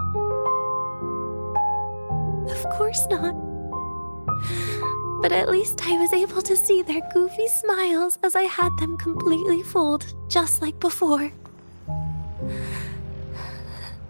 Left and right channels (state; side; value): inverted; both; correlation -1.00